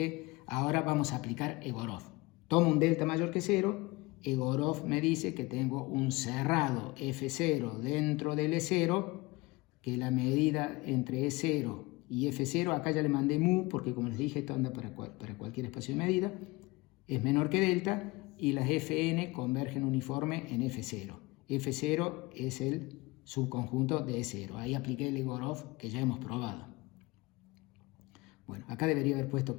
ahora vamos a aplicar Egorov. Tomo un delta mayor que 0, Egorov me dice que tengo un cerrado F0 dentro del E0, que la medida entre E0 y F0, acá ya le mandé mu, porque como les dije, esto anda para cualquier espacio de medida, es menor que delta, y las Fn convergen uniforme en F0. F0 es el subconjunto de E0. Ahí apliqué el Egorov que ya hemos probado. Bueno, acá debería haber puesto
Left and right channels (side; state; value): right; quieter; 23.0 dB